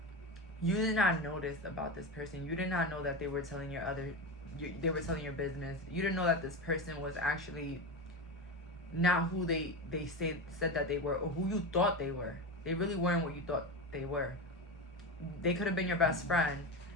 you did not notice about this person. You did not know that they were telling they were telling your business. You didn't know that this person was actually not who they said that they were, or who you thought they were. They really weren't what you thought they were. They could have been your best friend,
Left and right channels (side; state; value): both; normal; correlation 0.20